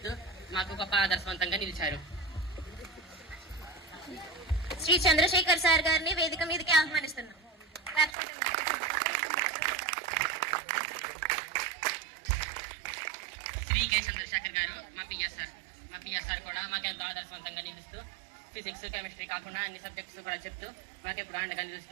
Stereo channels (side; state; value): left; drops out; at 8.2 s